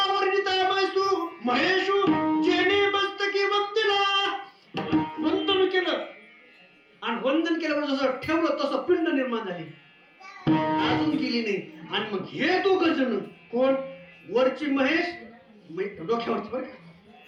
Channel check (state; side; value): identical; both; correlation 1.00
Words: वर्णिता महेशू जेने मस्तकी वंदिला, वंदन केलं. आणि वंदन केल्यावर जसं ठेवलं तसं पिंड निर्माण झाली, अजून गेली नाही. आणि मग हे दोघ जण कोण? वरची महेश, डोक्यावरची बरं